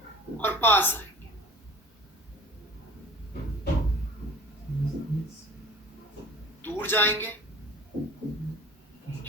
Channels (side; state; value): both; normal; correlation 0.43